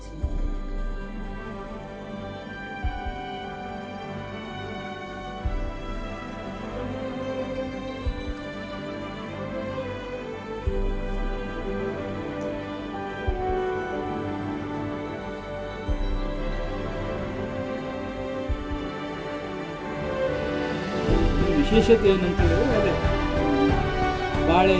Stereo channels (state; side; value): identical; both; correlation 1.00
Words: ವಿಶೇಷತೆ ಏನಂತ ಹೇಳಿದ್ರೆ ಅದೇ ಬಾಳೆ